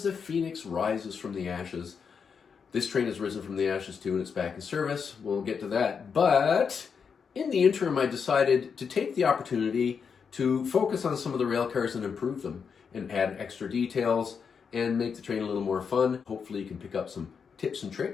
the phoenix rises from the ashes, this train has risen from the ashes too and it's back in service. We'll get to that. But in the interim, I decided to take the opportunity to focus on some of the rail cars and improve them and add extra details and make the train a little more fun. Hopefully you can pick up some tips and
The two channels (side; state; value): right; quieter; 6.2 dB